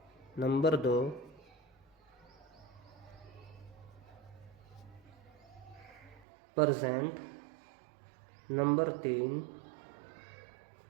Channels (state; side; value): drops out; left; at 6.2 s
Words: number 2 present, number 3